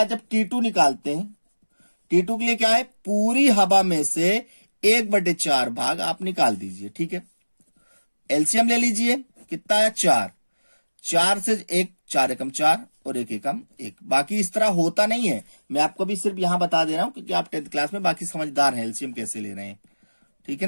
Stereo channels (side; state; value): both; inverted; correlation -1.00